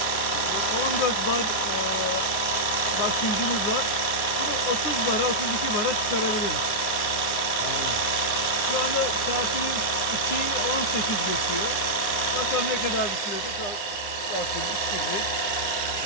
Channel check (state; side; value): late; right; 9.7 ms